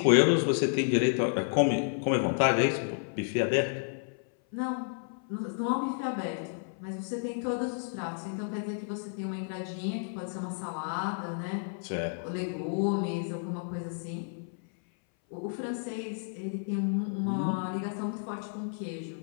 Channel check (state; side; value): silent; right; 57 dB below the other